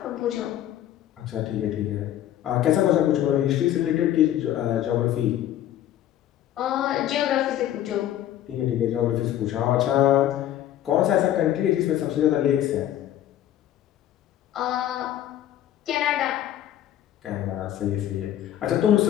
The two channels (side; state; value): right; quieter; 12.0 dB